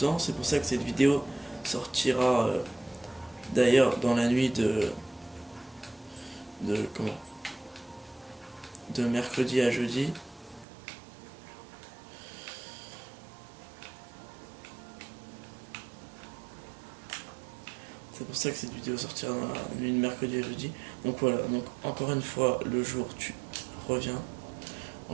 C'est pour ça que cette vidéo sortira d'ailleurs dans la nuit de comment, de mercredi à jeudi. C'est pour ça que cette vidéo sortira dans la nuit de mercredi à jeudi. Donc voilà, donc encore une fois, le jour tu reviens.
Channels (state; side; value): drops out; left; at 10.7 s